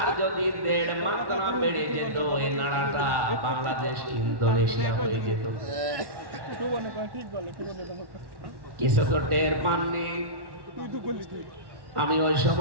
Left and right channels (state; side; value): late; left; 1.1 ms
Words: যদি 1.5 মাত্রা বেড়ে যেত এই নাড়াটা বাংলাদেশ ইন্দোনেশিয়া হয়ে যেত। কিছু তো টের পাননি। আমি ওই